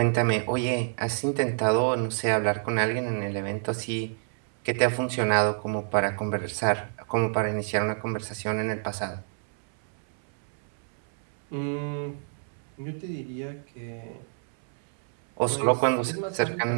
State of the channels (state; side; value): silent; left; 59 dB below the other